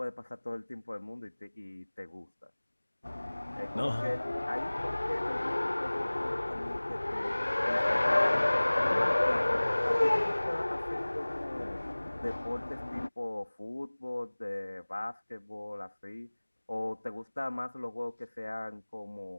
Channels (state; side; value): inverted; both; correlation -1.00